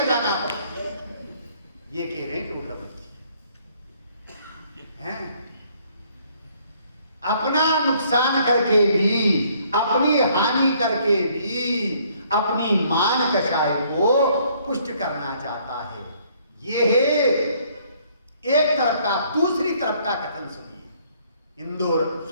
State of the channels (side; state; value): both; inverted; correlation -0.64